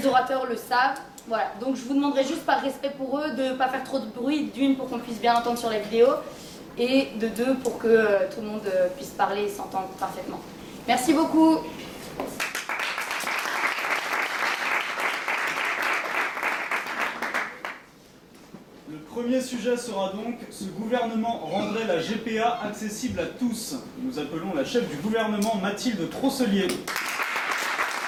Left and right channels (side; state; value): both; identical; correlation 1.00